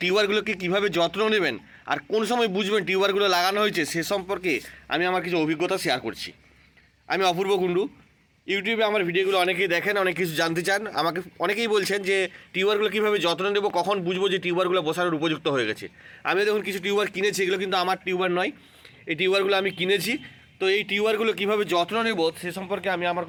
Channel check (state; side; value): identical; both; correlation 1.00